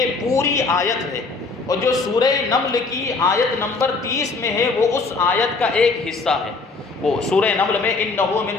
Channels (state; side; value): quieter; right; 4.0 dB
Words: پوری آیت ہے، اور جو سورہ نمل کی آیت نمبر 30 میں ہے وہ اس آیت کا ایک حصہ ہے۔ وہ سورہ نمل میں انہو من